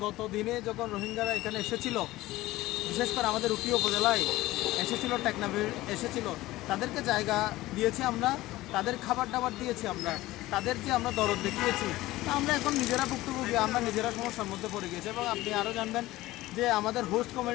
গত দিনে যখন রোহিঙ্গারা এখানে এসেছিল, বিশেষ করে আমাদের উখিয়া উপজেলায় এসেছিল, টেকনাফে এসেছিল, তাদেরকে জায়গা দিয়েছি আমরা, তাদের খাবার দাবার দিয়েছি আমরা, তাদের যে আমরা দরদ দেখিয়েছি। আমরা এখন নিজেরা ভুক্তভোগী, আমরা নিজেরা সমস্যার মধ্যে পড়ে গিয়েছি। এবং আপনি আরও জানবেন যে আমাদের হোস্ট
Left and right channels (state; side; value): quieter; right; 17.5 dB